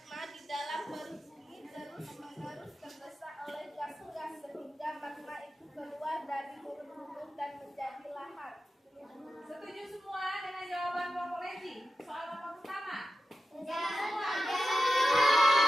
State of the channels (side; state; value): both; normal; correlation 0.92